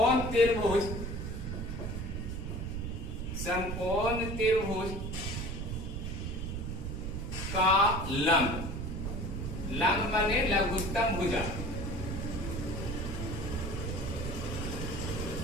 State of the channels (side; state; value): right; noise; rumble, 4 dB below the sound